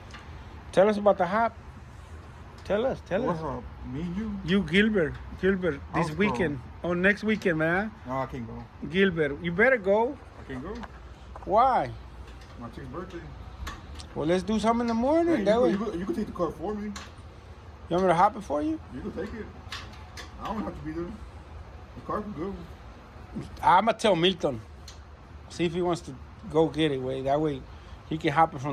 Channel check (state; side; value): identical; both; correlation 1.00